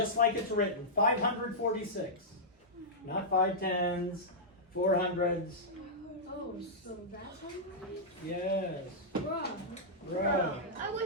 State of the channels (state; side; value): normal; both; correlation -0.11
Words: like it's written. 546. Not 5/10s, 400s. Oh, so that's how you write it? Yes. Bruh. I